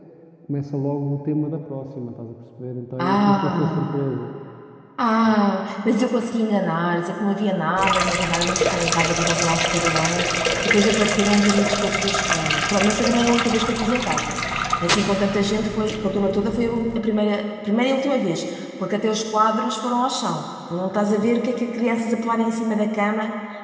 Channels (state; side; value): identical; both; correlation 1.00